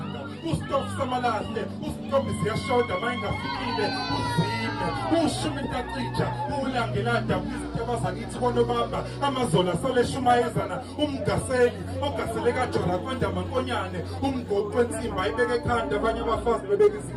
usitofu samalahle usitofu ziyashoda mayingafikile uzime ushumi ntacija ulangelanda abazakithi konobamba amazola saleshumayezana umgaseli ogasele kajora kwenda mankonyane umgoqo wensimba ayibeke ekhanda abanye abafazi bebeka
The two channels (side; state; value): both; identical; correlation 1.00